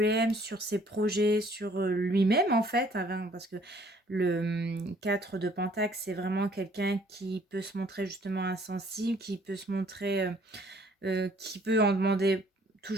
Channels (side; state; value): both; normal; correlation 0.60